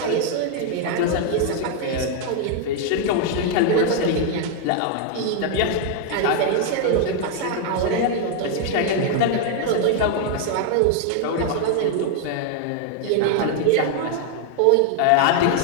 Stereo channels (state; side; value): different; both; correlation 0.00